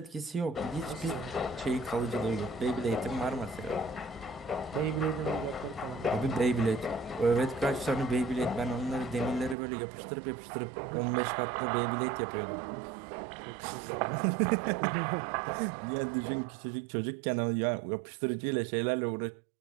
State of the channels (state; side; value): drops out; left; at 9.6 s